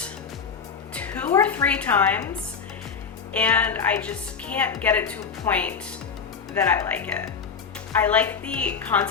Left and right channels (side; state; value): right; quieter; 6.0 dB